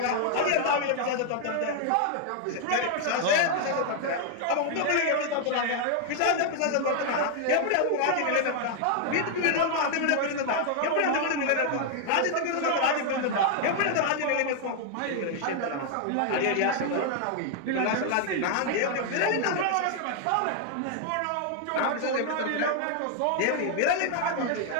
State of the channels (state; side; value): different; both; correlation 0.00